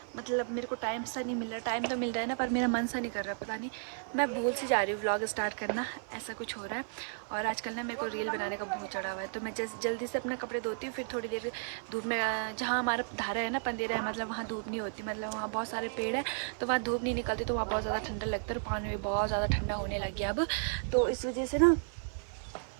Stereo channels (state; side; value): silent; left; 55 dB below the other